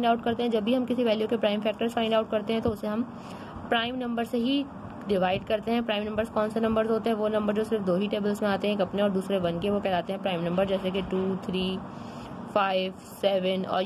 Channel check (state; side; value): identical; both; correlation 1.00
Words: आउट करते हैं? जब भी हम किसी वैल्यू के प्राइम फैक्टर्स फाइंड आउट करते हैं तो उसे हम प्राइम नंबर से ही डिवाइड करते हैं। प्राइम नंबर्स कौन से नंबर्स होते हैं? वो नंबर जो सिर्फ दो ही टेबल्स में आते हैं, एक अपने और दूसरे वन के, वो कहलाते हैं प्राइम नंबर, जैसे कि 2, 3, 5, 7 और